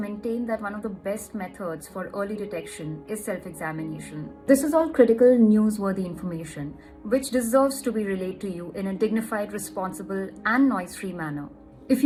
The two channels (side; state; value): both; identical; correlation 1.00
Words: that one of the best methods for early detection is self-examination. This is all critical, newsworthy information, which deserves to be relayed to you in a dignified, responsible, and noise-free manner. If